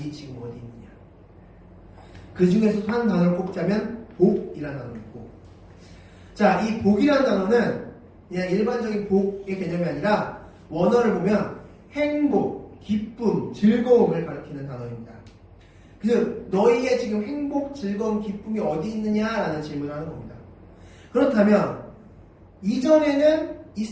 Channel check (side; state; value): both; identical; correlation 1.00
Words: 지금 어디 있느냐. 그 중에서 한 단어를 꼽자면 복이라는 단어가 있고, 자, 이 복이라는 단어는 그냥 일반적인 복의 개념이 아니라 원어를 보면 행복, 기쁨, 즐거움을 가리키는 단어입니다. 그래서 너희의 지금 행복, 즐거움, 기쁨이 어디 있느냐라는 질문을 하는 겁니다. 그렇다면 이전에는